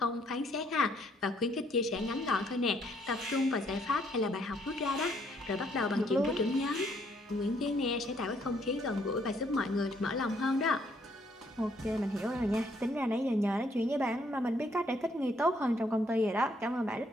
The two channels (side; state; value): both; normal; correlation 0.69